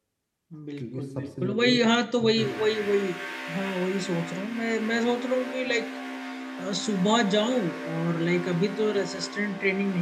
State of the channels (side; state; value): both; identical; correlation 1.00